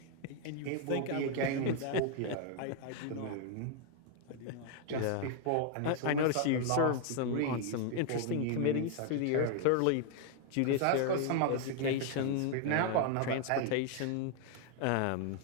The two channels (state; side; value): different; both; correlation 0.00